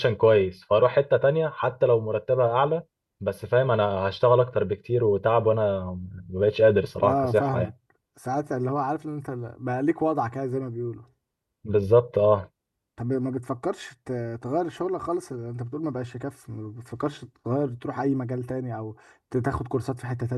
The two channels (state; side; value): identical; both; correlation 1.00